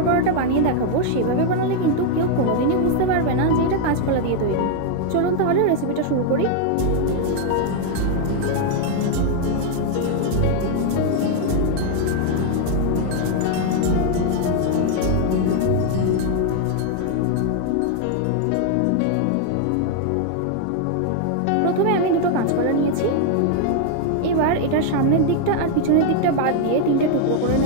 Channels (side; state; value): both; different; correlation 0.00